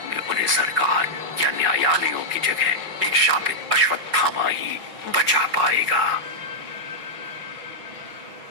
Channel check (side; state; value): left; late; 5.5 ms